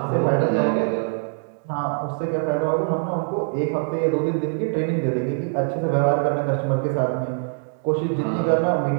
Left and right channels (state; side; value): silent; left; digital silence